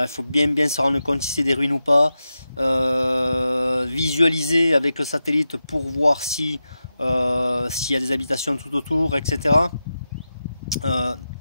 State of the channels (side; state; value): both; inverted; correlation -0.91